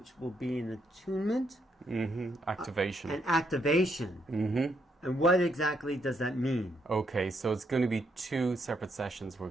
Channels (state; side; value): normal; both; correlation 0.76